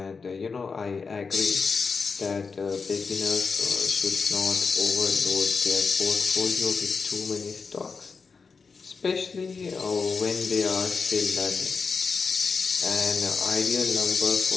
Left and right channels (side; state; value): right; quieter; 4.9 dB